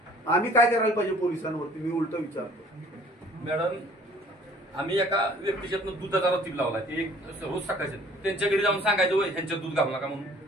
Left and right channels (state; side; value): normal; both; correlation 0.54